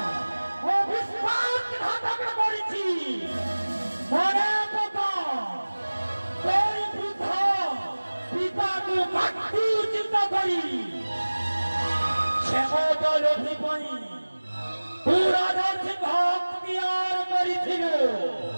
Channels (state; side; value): inverted; both; correlation -1.00